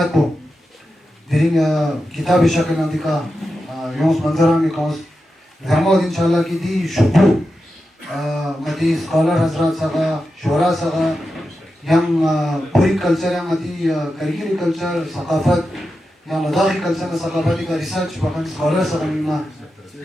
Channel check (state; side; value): normal; both; correlation 0.90